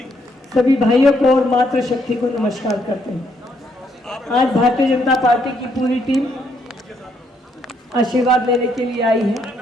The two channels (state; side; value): normal; both; correlation 0.73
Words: सभी भाइयों को और मातृशक्ति को नमस्कार करते हैं। आज भारतीय जनता पार्टी की पूरी टीम आशीर्वाद लेने के लिए आई